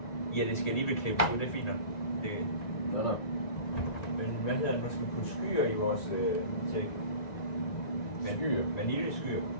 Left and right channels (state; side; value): late; right; 1.9 ms